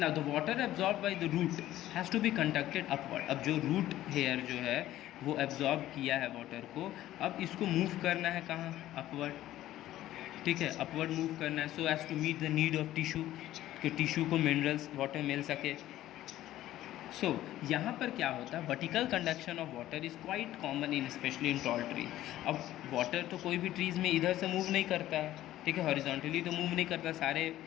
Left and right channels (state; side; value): quieter; right; 14.1 dB